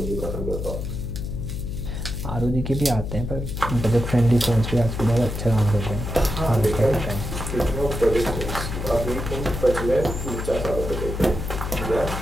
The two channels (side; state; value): left; noise; hum, 5 dB below the sound